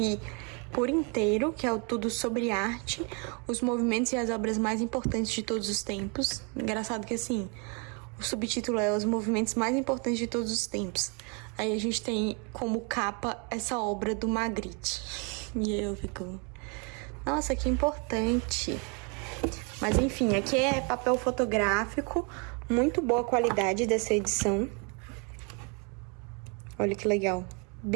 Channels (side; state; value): left; quieter; 34.6 dB